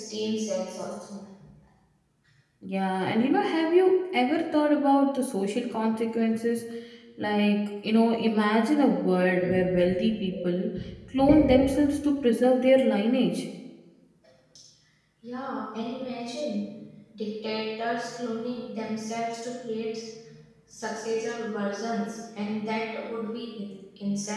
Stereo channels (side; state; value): both; identical; correlation 1.00